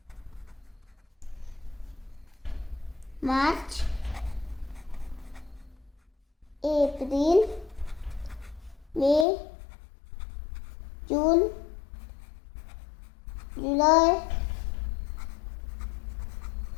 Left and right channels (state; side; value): drops out; right; at 9.2 s